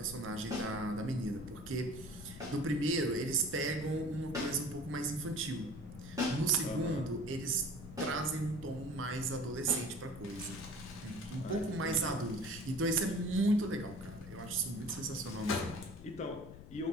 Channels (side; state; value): left; noise; rumble, 14 dB below the sound